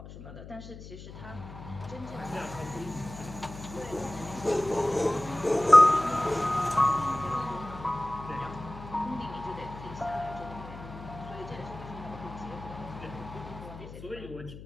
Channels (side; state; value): left; noise; hum, 14 dB below the sound